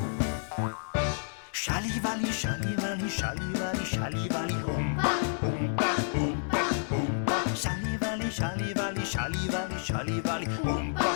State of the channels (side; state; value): right; silent; digital silence